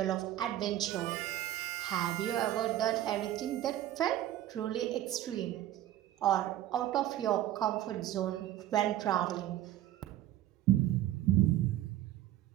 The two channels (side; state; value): left; quieter; 13.4 dB